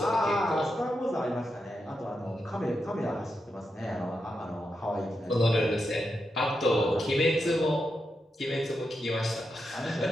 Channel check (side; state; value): both; normal; correlation 0.86